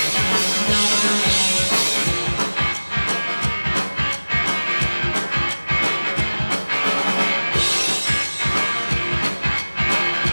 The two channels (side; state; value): both; inverted; correlation -1.00